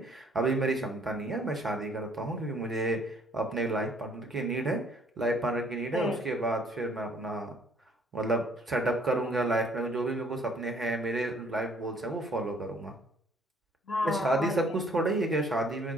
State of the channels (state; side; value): normal; both; correlation 0.61